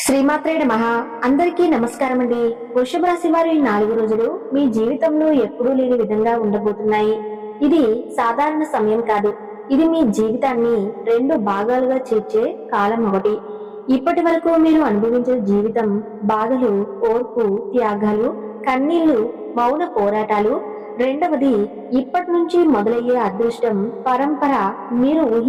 శ్రీమాత్రే నమః. అందరికీ నమస్కారం అండి. వృషభ రాశి వారి 4 రోజులు మీ జీవితంలో ఎప్పుడూ లేని విధంగా ఉండబోతున్నాయి. ఇది సాధారణ సమయం కాదు. ఇది మీ జీవితాన్ని 2 భాగాలుగా చేర్చే కాలం ఒకటి. ఇప్పటి వరకు మీరు అనుభవించిన జీవితం బాధలు, ఓర్పు, త్యాగాలు, కన్నీళ్లు, మౌన పోరాటాలు. రెండవది ఇప్పటి నుంచి మొదలయ్యే అదృష్టం, పరంపర, మీరు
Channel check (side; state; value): both; identical; correlation 1.00